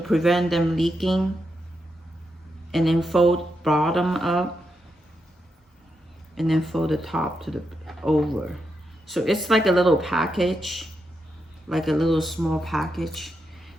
prevent them leaking. And then fold bottom up. And then fold the top to the over. So it's like a little package. Like a little small package.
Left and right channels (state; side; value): normal; both; correlation 0.84